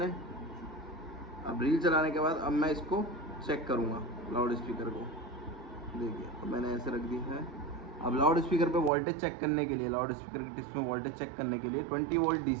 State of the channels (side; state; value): left; drops out; at 8.9 s